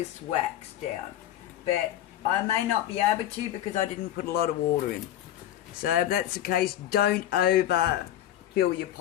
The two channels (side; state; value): right; quieter; 12.1 dB